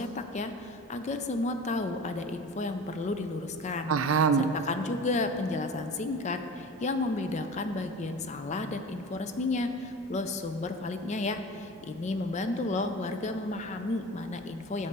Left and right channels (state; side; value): normal; both; correlation 0.35